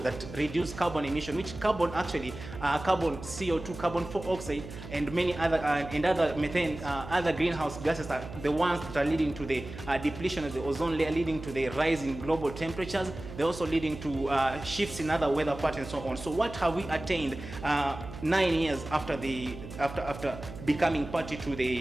that reduce carbon emission, which carbon actually, carbon CO2, carbon dioxide, and many other other methane, other greenhouse gases are the ones that are leading to the depletion of the ozone layer, leading to the rise in global temperatures. They're also leading to shifts in other weather patterns and so on. So what have we attained 9 years after after becoming party to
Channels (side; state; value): right; noise; hum, 12 dB below the sound